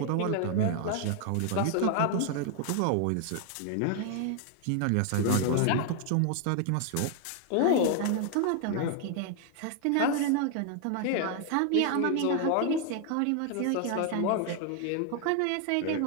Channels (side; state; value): both; different; correlation 0.00